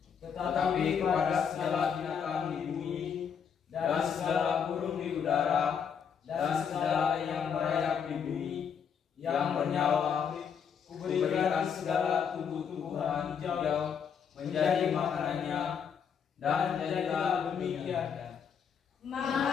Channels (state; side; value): quieter; right; 7.2 dB